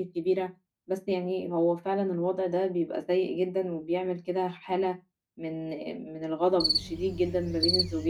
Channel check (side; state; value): both; identical; correlation 1.00